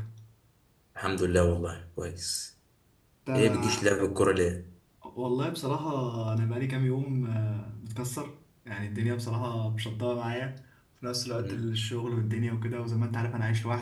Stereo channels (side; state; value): both; identical; correlation 1.00